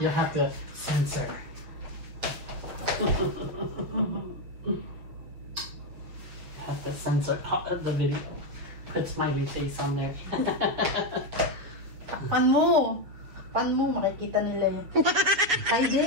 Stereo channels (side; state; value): left; late; 7.0 ms